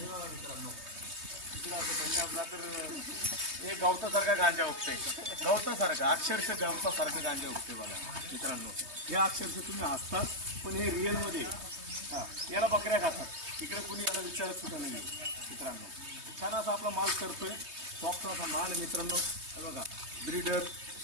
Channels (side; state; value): left; late; 3.2 ms